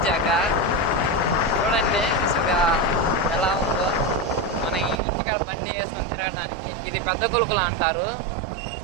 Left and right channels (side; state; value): left; drops out; at 5.0 s